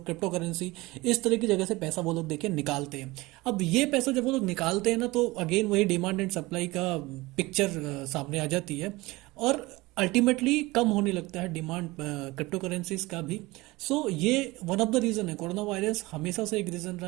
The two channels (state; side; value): quieter; left; 21.2 dB